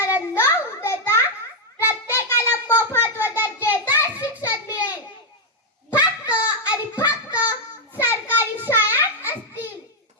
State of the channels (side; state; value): both; normal; correlation -0.01